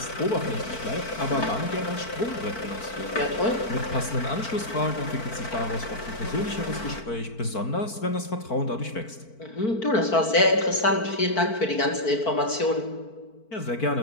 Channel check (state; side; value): late; right; 4.5 ms